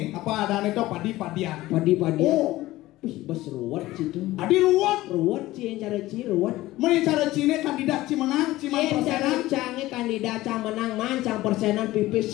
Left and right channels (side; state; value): right; quieter; 17.1 dB